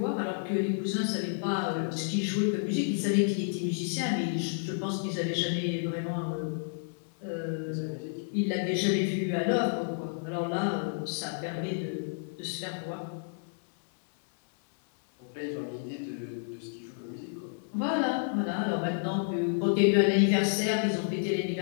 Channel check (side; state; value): right; silent; 58 dB below the other